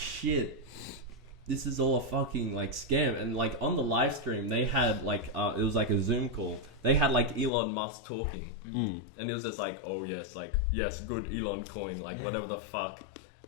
this is all a fucking like scam. And like on the live stream, they had like, it was like a Zoom call. They had like Elon Musk talking. And it was just like, oh yes, like, yes, good Elon coin, like whatever the fuck.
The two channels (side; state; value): right; drops out; at 7.5 s